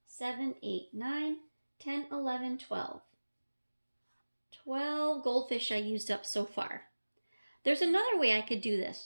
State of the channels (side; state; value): both; inverted; correlation -1.00